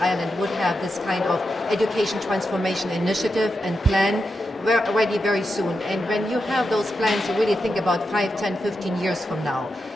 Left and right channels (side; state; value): both; normal; correlation 0.87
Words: Ireland would have this kind of education transformation initiative and plan ready very soon. And when you have those plans, you really think about 5, 10, 15 years from now.